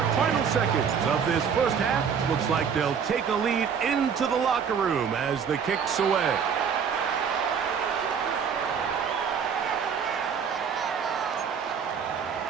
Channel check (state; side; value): quieter; left; 6.9 dB